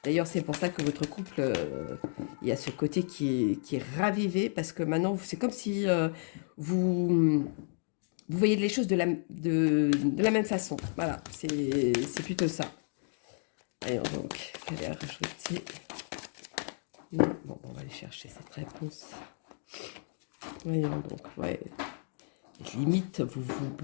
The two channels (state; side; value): silent; right; 56 dB below the other